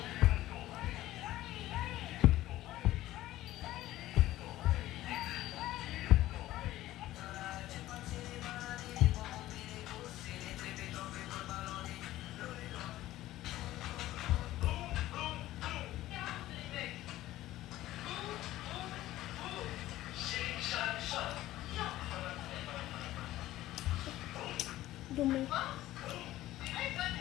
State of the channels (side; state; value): right; quieter; 15.4 dB